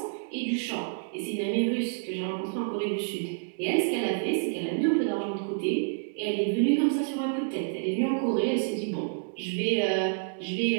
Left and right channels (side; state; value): left; silent; digital silence